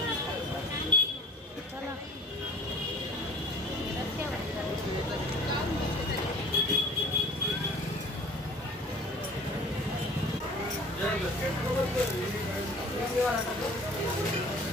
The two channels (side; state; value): both; normal; correlation 0.47